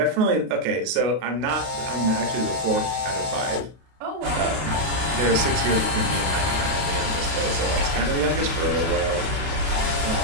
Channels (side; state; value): left; late; 33 ms